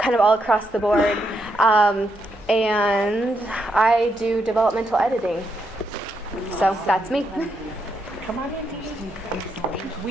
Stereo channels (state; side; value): normal; both; correlation 0.80